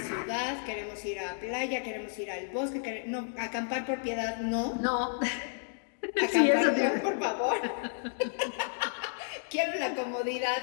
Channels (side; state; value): right; silent; digital silence